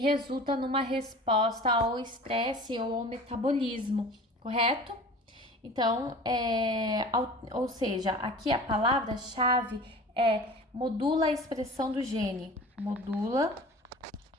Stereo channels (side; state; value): both; normal; correlation 0.40